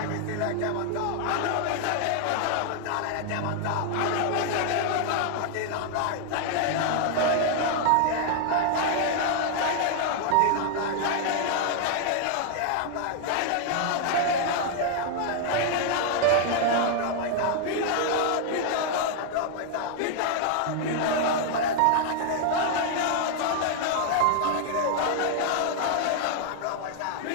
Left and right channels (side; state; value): both; different; correlation 0.00